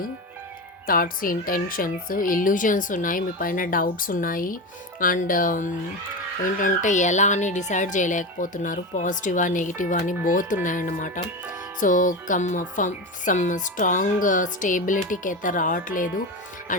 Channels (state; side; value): normal; both; correlation 0.20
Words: intentions, illusions ఉన్నాయి, మీ పైన డౌట్స్ ఉన్నాయి. అండ్ ఏంటంటే ఎలా అని డిసైడ్ చేయలేకపోతున్నారు. పాజిటివా నెగిటివా అని బోత్ ఉన్నాయన్నమాట. సో సమ్ స్ట్రాంగ్ స్టేబిలిటీకి అయితే రావట్లేదు.